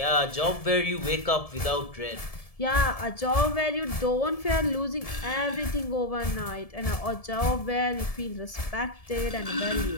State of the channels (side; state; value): right; late; 1.7 ms